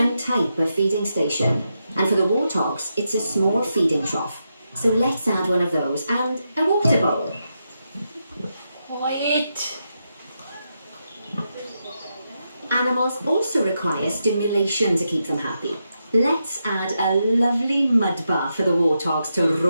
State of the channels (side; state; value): both; inverted; correlation -0.85